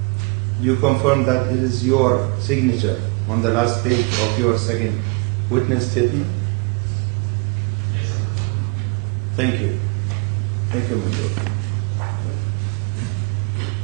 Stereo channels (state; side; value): quieter; left; 29.6 dB